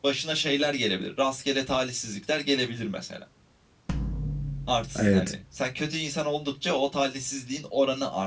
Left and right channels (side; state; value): both; identical; correlation 1.00